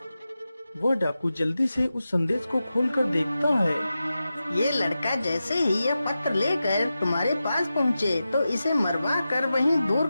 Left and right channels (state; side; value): inverted; both; correlation -0.92